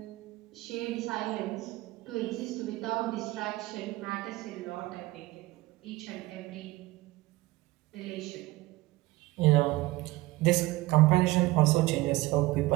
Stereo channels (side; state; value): left; quieter; 19.4 dB